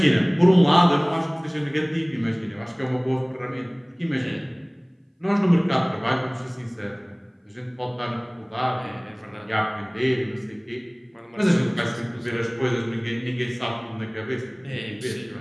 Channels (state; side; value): identical; both; correlation 1.00